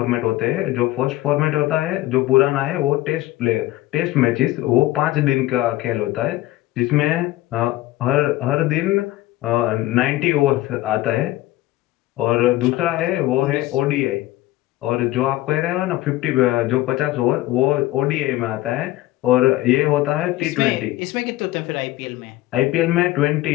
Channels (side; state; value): right; quieter; 16.9 dB